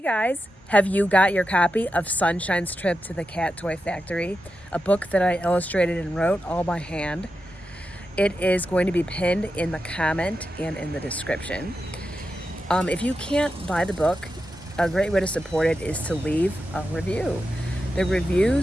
have you got your copy of Sunshine's Trip to the Cat Toy Factory, a book that I illustrated and wrote all by hand? It is going to be pinned in the comment and in the description. If you can't buy the book, a great way to support it is to leave a review. The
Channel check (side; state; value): both; normal; correlation 0.89